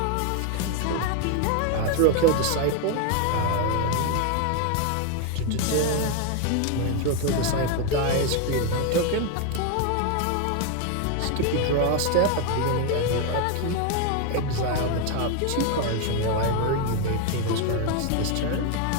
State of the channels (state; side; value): different; both; correlation 0.01